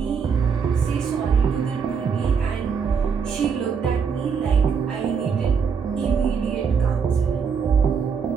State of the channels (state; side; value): quieter; left; 6.3 dB